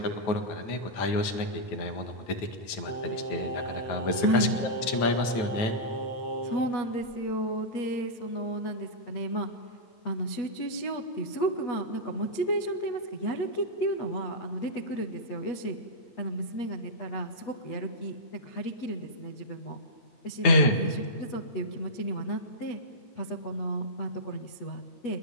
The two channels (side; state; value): right; late; 9.2 ms